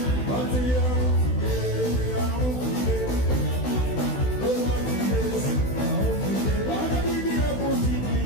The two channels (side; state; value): right; late; 16 ms